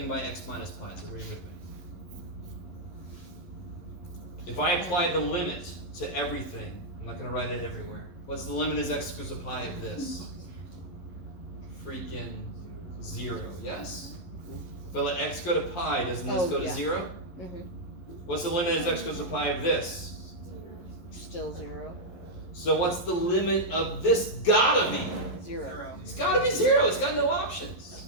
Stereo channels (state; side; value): late; right; 11 ms